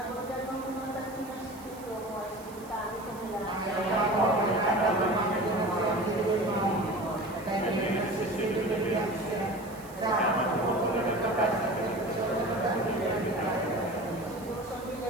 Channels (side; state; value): right; noise; hiss, 21 dB below the sound